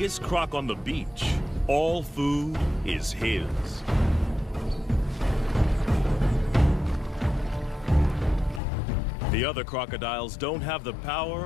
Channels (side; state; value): right; drops out; at 8.6 s